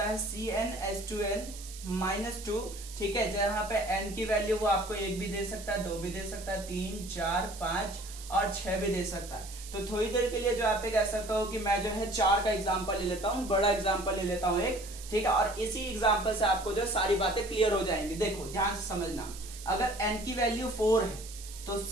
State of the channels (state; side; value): noise; right; hiss, 14 dB below the sound